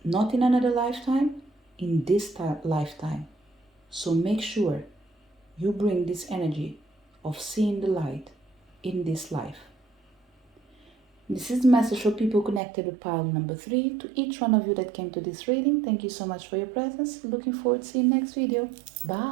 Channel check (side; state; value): left; drops out; at 12.6 s